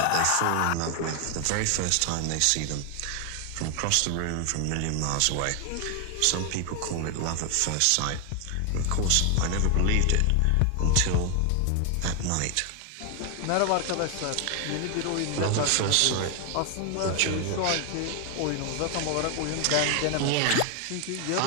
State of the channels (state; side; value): different; both; correlation 0.00